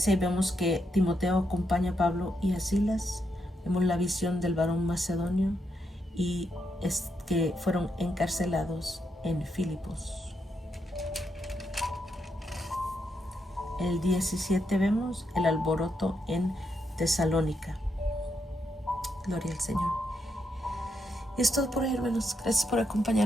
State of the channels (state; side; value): normal; both; correlation 0.81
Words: vemos que Timoteo acompaña a Pablo y a Silas. Vemos la visión del varón macedonio y es que fueron encarcelados en Filipos. El 17 vemos el alboroto en Tesalónica. Gloria al Señor. Y es todo por hoy, hermanos. Gracias por